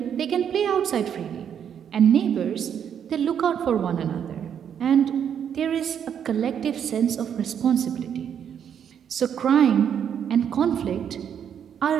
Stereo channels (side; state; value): left; quieter; 8.5 dB